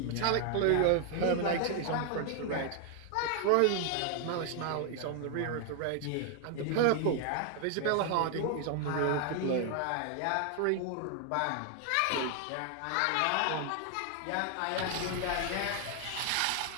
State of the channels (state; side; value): different; both; correlation 0.00